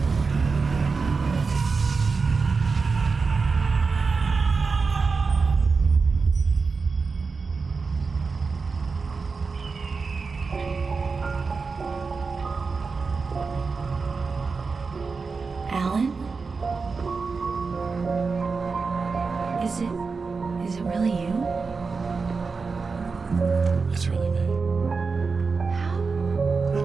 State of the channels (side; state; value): left; quieter; 4.6 dB